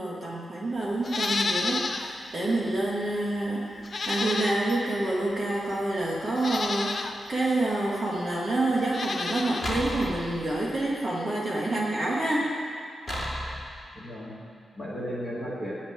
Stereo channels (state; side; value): normal; both; correlation 0.88